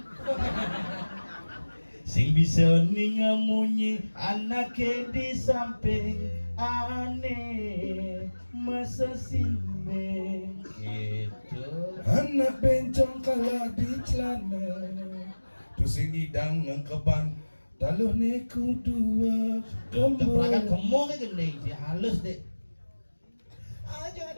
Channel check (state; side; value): inverted; both; correlation -1.00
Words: Sing bisa ningamunyi anake di samping aneh masa simbe gitu. Anak bencong kalah di celana tu sing hidang ngkeban taluh neku dua Perangkat kembali. gemuk kan gending sih halus deh. Ah, jangan